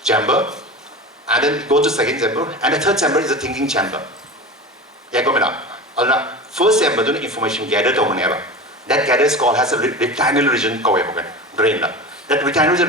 chamber, and then go to second chamber, and the third chamber is the thinking chamber. Yeah, go on. First chamber, the information gathered or whenever. That gathers called has a retinal region called brain. That retinal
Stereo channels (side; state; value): both; normal; correlation 0.30